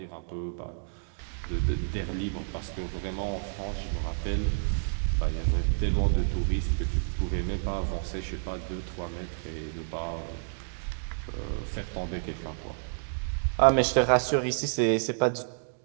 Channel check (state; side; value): silent; left; digital silence